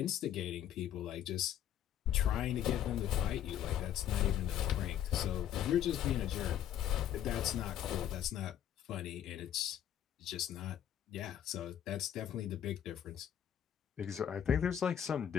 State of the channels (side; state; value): right; quieter; 10.4 dB